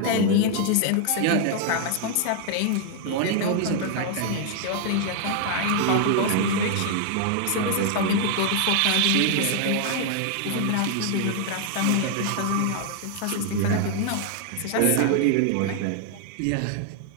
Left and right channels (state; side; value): different; both; correlation 0.00